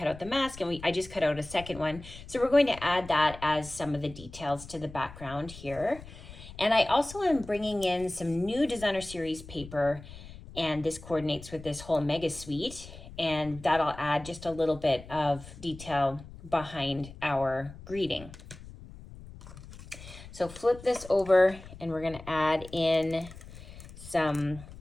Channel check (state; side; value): noise; left; rumble, 16 dB below the sound